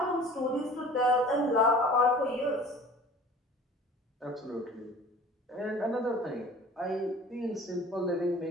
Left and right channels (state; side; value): normal; both; correlation 0.44